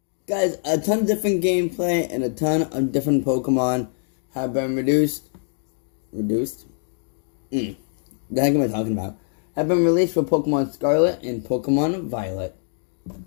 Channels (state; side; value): silent; right; 63 dB below the other